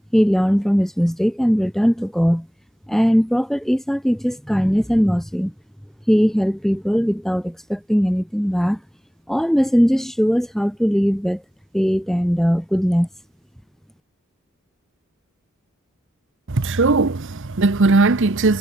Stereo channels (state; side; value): normal; both; correlation 0.87